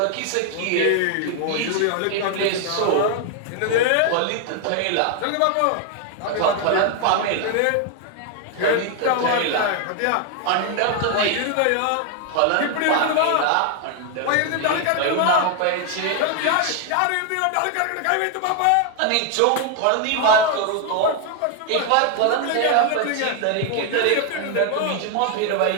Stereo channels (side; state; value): both; different; correlation 0.00